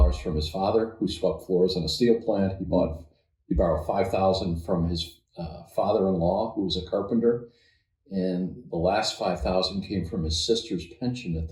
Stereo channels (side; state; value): both; identical; correlation 1.00